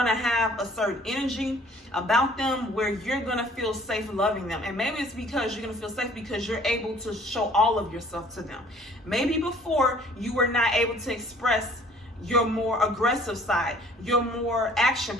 to have a certain energy about them where you're going to feel safe loving them. And maybe it's because you're going to feel safe because you're able to show all of yourself to them. Maybe before you were not able to express your more aggressive side, your more action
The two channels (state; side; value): normal; both; correlation 0.55